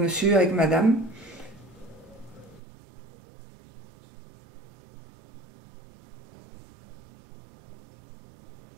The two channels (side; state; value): left; drops out; at 2.6 s